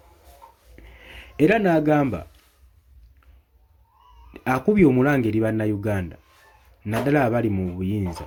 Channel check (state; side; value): identical; both; correlation 1.00